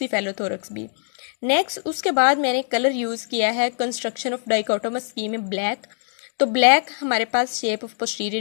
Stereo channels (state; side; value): silent; right; digital silence